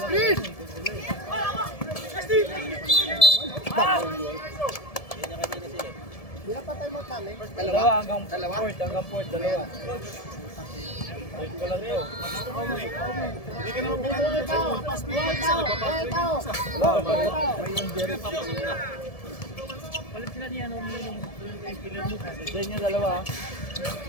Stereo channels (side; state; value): right; late; 1.7 ms